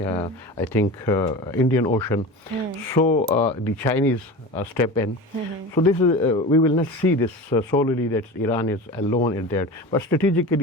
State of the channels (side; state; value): both; normal; correlation 0.31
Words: I think, Indian Ocean. So the Chinese step in. So this is, we will not see this solely that Iran is alone in that. But